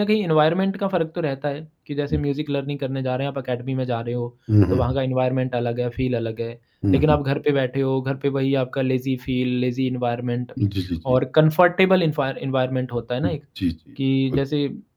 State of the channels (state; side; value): identical; both; correlation 1.00